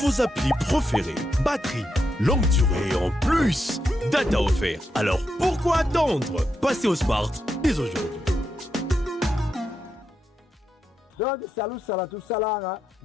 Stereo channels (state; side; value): normal; both; correlation 0.83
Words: applis préférées, batterie, longue durée et en plus, data offert. Alors pourquoi attendre? Passez au smart dès aujourd'hui. Donc, salut, tout salanga,